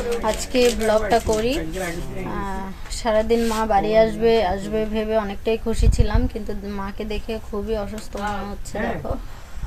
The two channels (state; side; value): identical; both; correlation 1.00